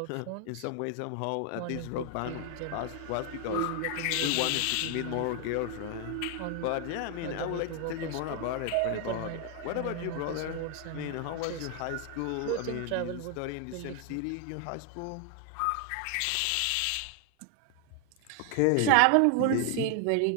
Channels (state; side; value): different; both; correlation 0.00